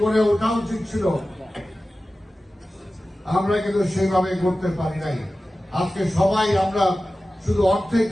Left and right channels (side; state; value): both; normal; correlation 0.95